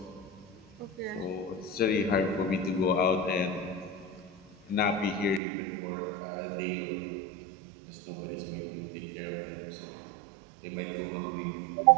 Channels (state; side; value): drops out; left; at 5.4 s